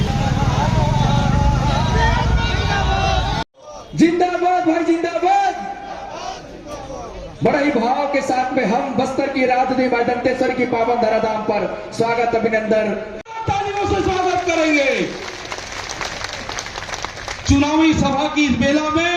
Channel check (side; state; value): both; identical; correlation 1.00